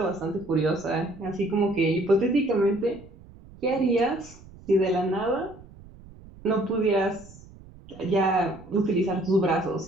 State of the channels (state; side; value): noise; right; rumble, 21 dB below the sound